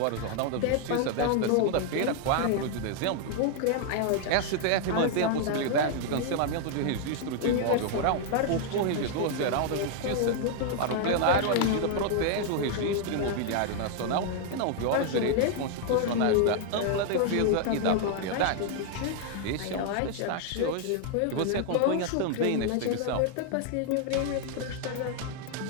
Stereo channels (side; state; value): both; different; correlation 0.00